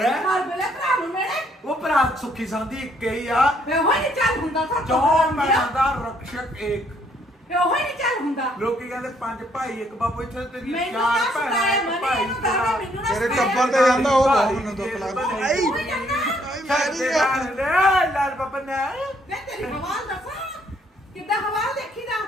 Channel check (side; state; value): both; normal; correlation 0.68